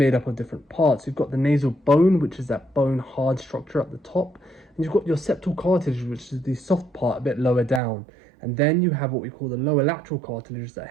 up of different parts. You've got the nasal bone, which is that bone hard structure at the top, and you've got your septal cartilage, which is the soft part a bit lower down. And then you have what we call the lower lateral cartilage that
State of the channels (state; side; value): drops out; left; at 7.8 s